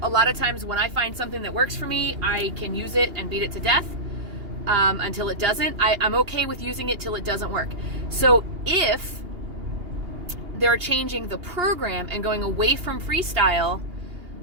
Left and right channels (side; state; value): left; late; 2.8 ms